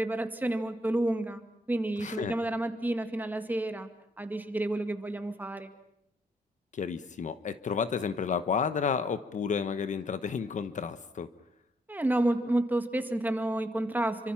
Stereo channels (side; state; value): both; normal; correlation 0.72